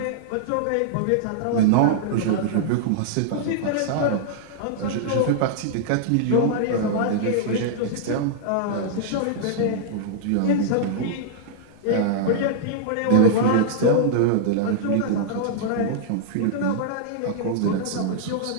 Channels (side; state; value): both; different; correlation -0.01